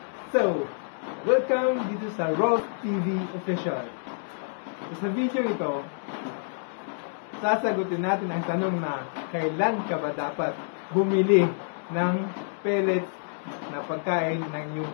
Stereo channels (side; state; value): right; silent; digital silence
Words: So, welcome dito sa Rolls TV Official. So, sa video ito, sasagutin natin ang tanong na kailan ka ba dapat bumili ng pellets na pagkain ng iyong